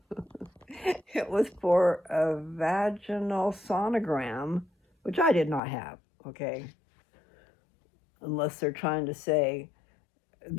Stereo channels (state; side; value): drops out; right; at 5.6 s